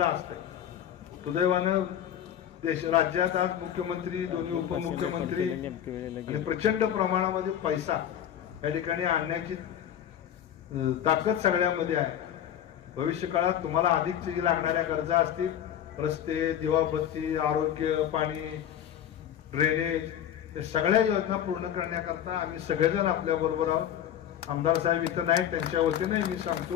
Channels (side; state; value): right; quieter; 10.2 dB